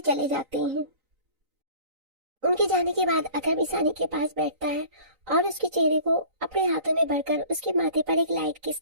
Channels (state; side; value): late; left; 3.9 ms